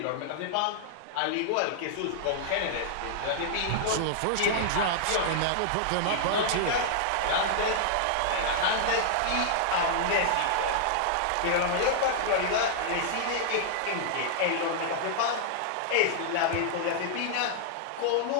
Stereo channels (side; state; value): both; different; correlation -0.01